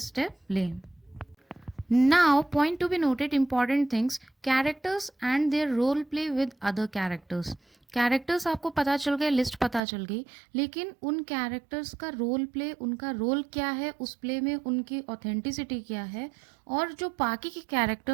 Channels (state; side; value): drops out; left; at 9.8 s